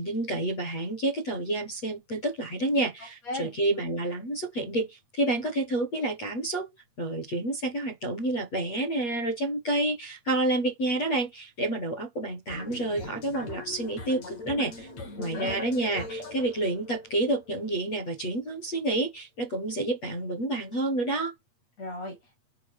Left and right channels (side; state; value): right; late; 8.4 ms